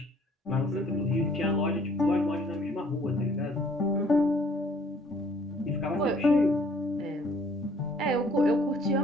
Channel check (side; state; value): both; normal; correlation 0.59